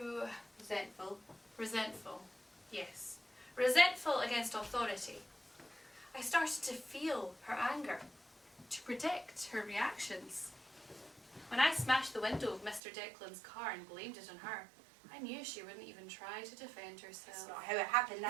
Resentful. resentful. Yes. Resentful against authority. I started to feel her anger, to predict her reactions. When I smashed the window of Mr. Declan's car and blamed it on her, I knew she wouldn't even try to defend herself. That's not how it happened.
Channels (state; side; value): drops out; left; at 12.8 s